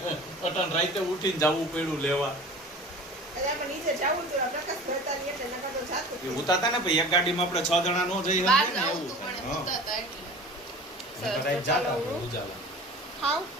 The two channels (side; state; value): both; normal; correlation 0.40